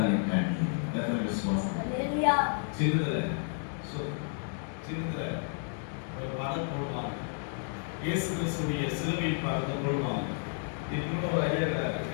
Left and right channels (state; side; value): silent; right; 57 dB below the other